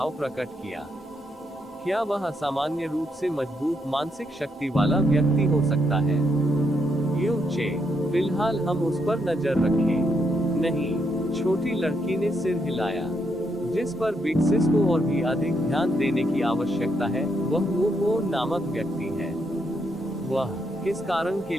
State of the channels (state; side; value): normal; both; correlation 0.78